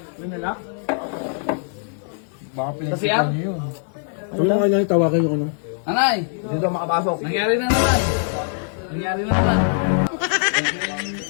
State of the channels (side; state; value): right; silent; 59 dB below the other